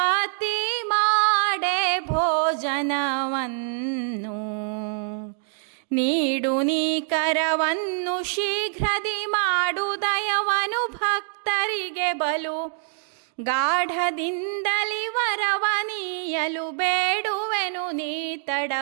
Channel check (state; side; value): silent; left; digital silence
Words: ಮಾಡೆ ಭೋಜನವನ್ನು ನೀಡು ನೀ ಕರವನ್ನು ಶೀಘ್ರದಿ ಮಾಡು ದಯವನು ಭಕ್ತರಿಗೆ ಬಲು ಗಾಢದಿಂದಲಿ ವರವನೀಯಲು ಬೇಡುವೆನು ನೀ